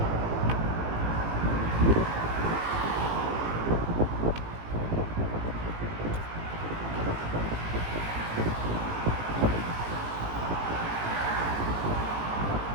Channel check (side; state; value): left; late; 18 ms